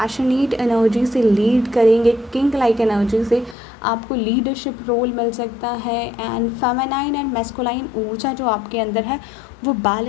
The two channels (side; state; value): right; drops out; at 3.6 s